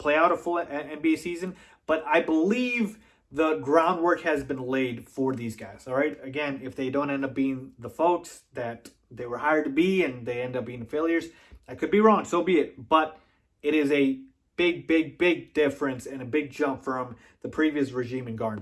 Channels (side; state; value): both; identical; correlation 1.00